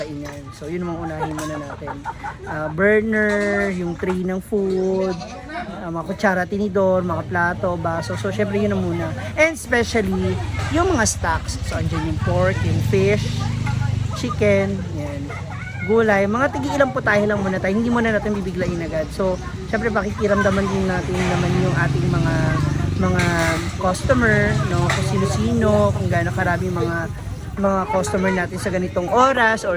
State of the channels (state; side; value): identical; both; correlation 1.00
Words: So, yun ang mga unahin muna natin. Burner, yung tray ng food, mga kutsara, tinidor, mga plato, baso. So, syempre yun na muna. And especially, yung mga stocks. So, andyan yung pork, yung fish, chicken, yan, gulay. Mga tigi-ilang putahe lang muna tayo. Hindi muna natin bibiglain agad. So, syempre, pakikiramdaman din natin naman yung ating mga customer, no, kung sino-sino, kung gaano karami mga customer natin sa ganitong oras